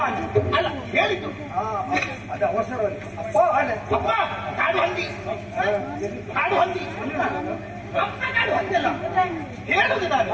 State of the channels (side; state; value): both; identical; correlation 1.00